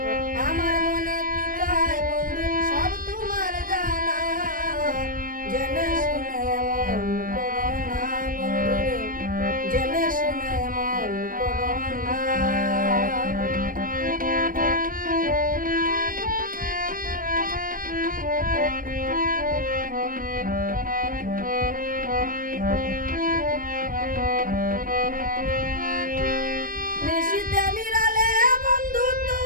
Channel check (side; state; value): left; late; 0.40 ms